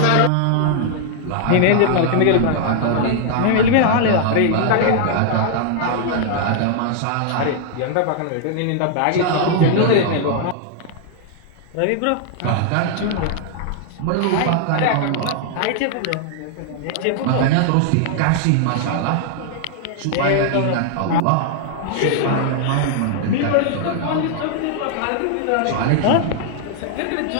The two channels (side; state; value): both; different; correlation 0.00